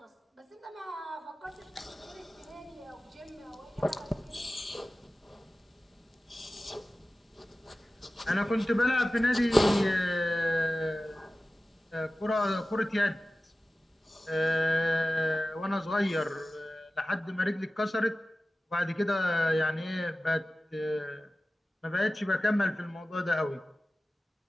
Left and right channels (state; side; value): normal; both; correlation 0.96